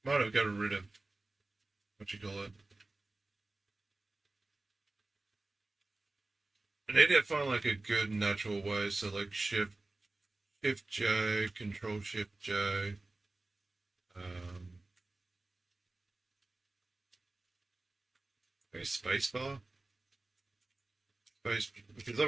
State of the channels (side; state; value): left; quieter; 3.0 dB